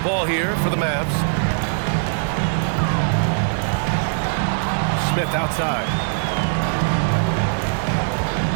ball here for the Mavs. Smith outside.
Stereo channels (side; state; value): left; silent; digital silence